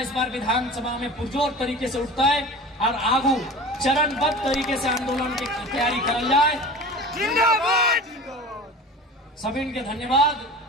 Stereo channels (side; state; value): both; normal; correlation 0.36